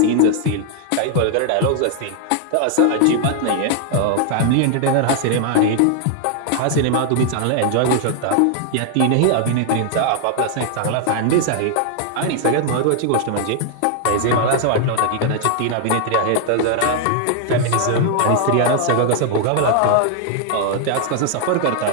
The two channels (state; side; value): different; both; correlation 0.00